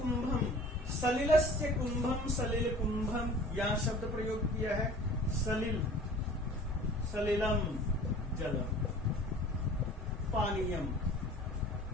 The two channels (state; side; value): normal; both; correlation 0.46